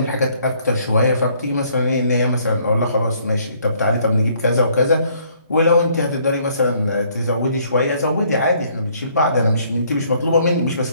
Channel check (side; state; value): both; inverted; correlation -0.64